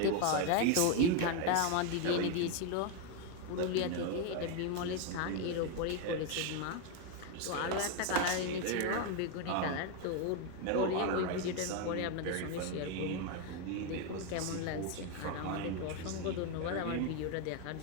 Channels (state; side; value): different; both; correlation 0.02